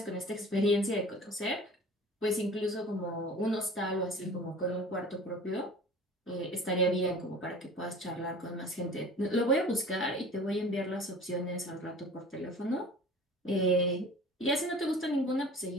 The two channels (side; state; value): both; normal; correlation 0.42